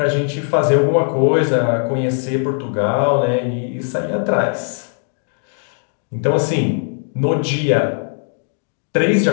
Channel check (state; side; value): silent; right; 55 dB below the other